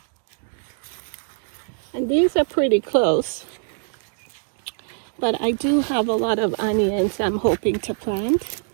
And these are pretty close, but I do have a lot of onions I'm hoping to plant.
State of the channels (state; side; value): silent; left; digital silence